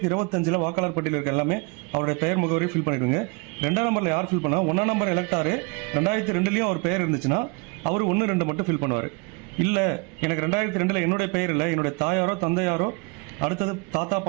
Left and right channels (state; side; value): quieter; left; 29.7 dB